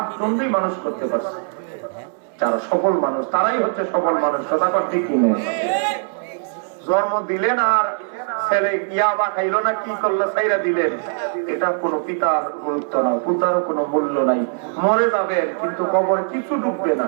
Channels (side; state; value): left; silent; digital silence